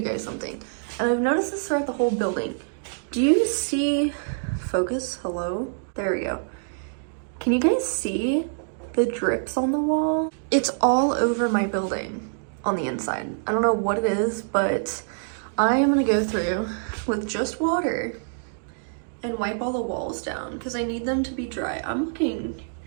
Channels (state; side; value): silent; left; digital silence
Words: guys something. And I've noticed this throughout the whole building. Do you see, focus, hello? There we go. Can you guys see the drips on the wall? It's all over my building on the inside. I don't know what it is, but I am gonna go through with just water and wipe all the walls down because I need them to be dry. I'm looking